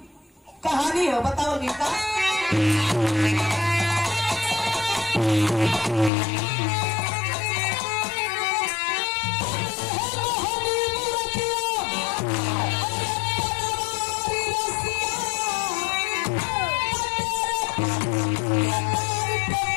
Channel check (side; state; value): right; drops out; at 6.1 s